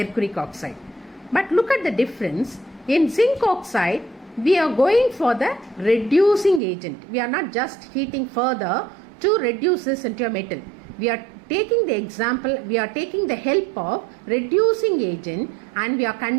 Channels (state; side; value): drops out; left; at 6.6 s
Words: oxide. But look at the difference. In zinc oxide, we are going for the reducing agent. We are not just heating further to reduce this into a metal. We are taking the example, we are taking the help of reducing agent and we are